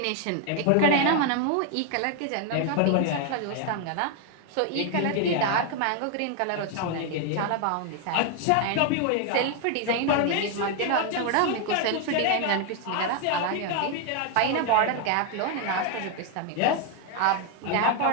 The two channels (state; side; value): different; both; correlation 0.01